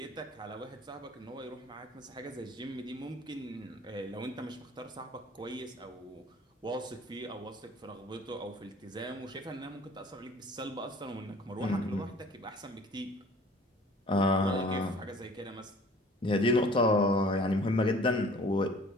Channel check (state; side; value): normal; both; correlation 0.50